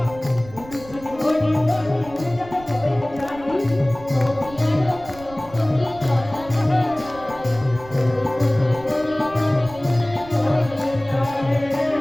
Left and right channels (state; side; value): noise; right; rumble, 18 dB below the sound